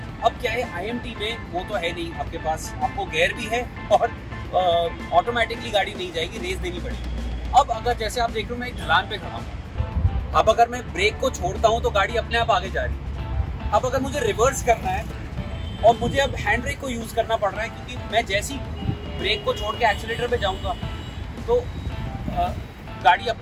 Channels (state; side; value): identical; both; correlation 1.00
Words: अब क्या है, IMT में वो तो है नहीं आपके पास, आपको गियर भी है और ऑटोमेटिकली गाड़ी नहीं जाएगी, रेस देनी पड़ेगी। अब अगर जैसे आप देख रहे हो मैं एक ढलान पे खड़ा हूँ, अब अगर मैं ब्रेक को छोड़ता हूँ तो गाड़ी अपने आप आगे जा रही है। अब अगर मुझे रिवर्स करना है और मुझे अब हैंड ब्रेक को यूज करना पड़ रहा है, क्योंकि मैं जैसी ब्रेक को छोड़ के एक्सीलरेटर पे जाऊंगा तो गाड़ी